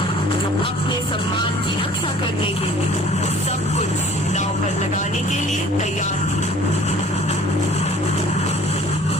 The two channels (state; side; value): normal; both; correlation 0.51